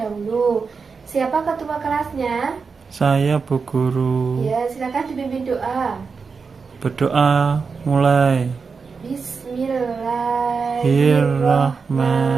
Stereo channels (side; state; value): left; quieter; 5.1 dB